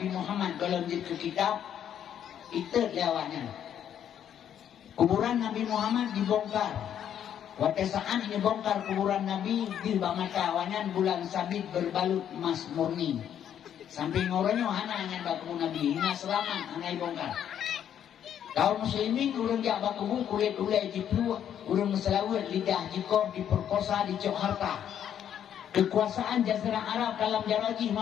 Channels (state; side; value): quieter; right; 9.6 dB